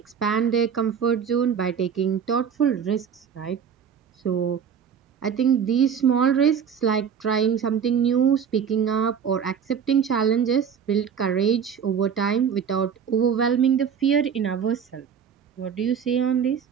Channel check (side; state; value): left; quieter; 7.5 dB